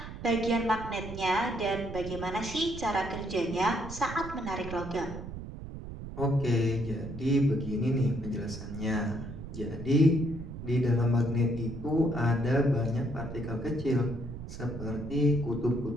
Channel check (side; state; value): right; noise; rumble, 10 dB below the sound